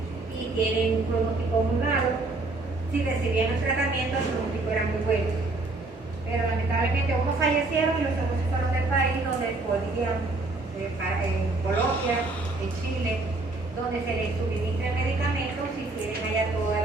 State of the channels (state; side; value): quieter; left; 3.1 dB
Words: y tienen un pronóstico muy malo. Si recibían el tratamiento, el pronóstico era muy bueno. Pero lamentablemente unos fallecieron y los otros se fueron del país donde podían, en Colombia, en Chile, donde se les suministra medicamentos y tienen allá toda